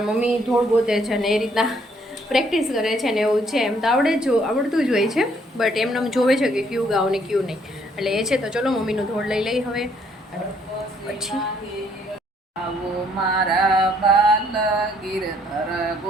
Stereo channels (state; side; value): normal; both; correlation 0.67